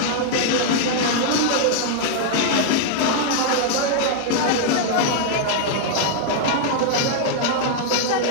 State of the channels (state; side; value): different; both; correlation -0.01